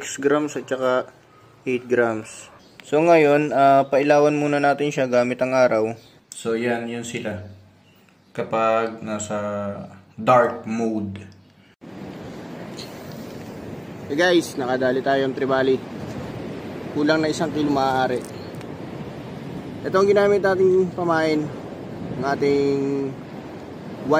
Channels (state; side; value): identical; both; correlation 1.00